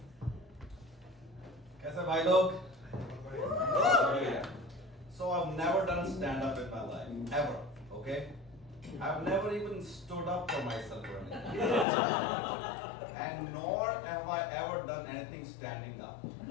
कैसे भाई लोग? So I've never done stand-up in my life, ever, okay? I've never even stood up for myself or anything. And nor have I ever done anything standing up.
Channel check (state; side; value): drops out; right; at 11.9 s